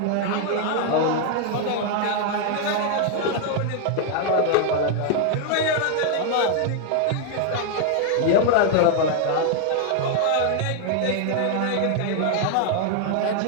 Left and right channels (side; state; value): both; different; correlation 0.00